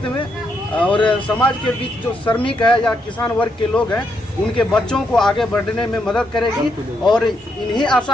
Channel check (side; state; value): both; normal; correlation 0.78